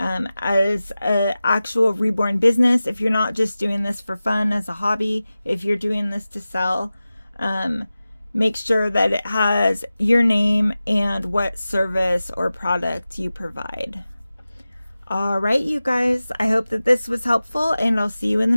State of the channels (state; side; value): inverted; both; correlation -0.95